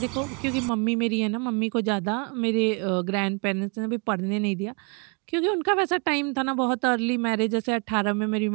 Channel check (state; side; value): quieter; left; 34.4 dB